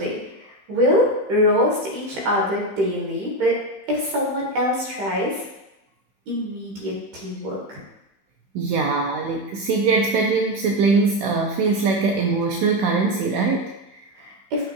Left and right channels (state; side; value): late; left; 15 ms